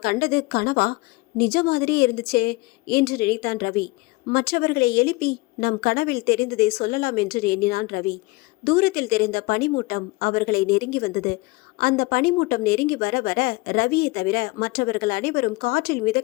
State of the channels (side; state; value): right; quieter; 22.8 dB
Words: கண்டது கனவா? நிஜ மாதிரியே இருந்துச்சே என்று நினைத்தான் ரவி. மற்றவர்களை எழுப்பி நம் கனவில் தெரிந்ததை சொல்லலாம் என்று எண்ணினான் ரவி. தூரத்தில் தெரிந்த பனிமூட்டம் அவர்களை நெருங்கி வந்தது. அந்த பனிமூட்டம் நெருங்கி வர வர ரவியை தவிர மற்றவர்கள் அனைவரும் காற்றில்